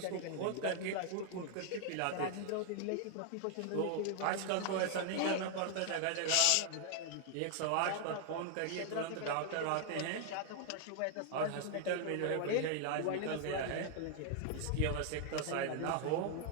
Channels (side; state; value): both; different; correlation 0.00